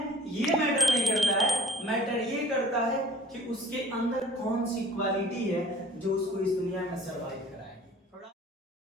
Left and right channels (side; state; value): both; normal; correlation 0.50